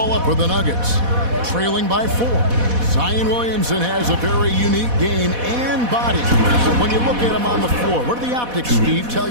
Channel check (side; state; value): left; late; 4.1 ms